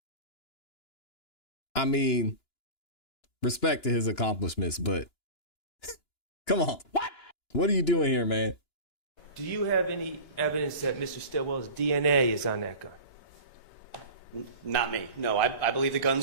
I mean, respect to his accomplishments, but come on. What are you doing here, man? Do you have any evidence that Mr. Stillwell's DNA is on that gun? Not me. No, I believe the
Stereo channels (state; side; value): late; right; 2.9 ms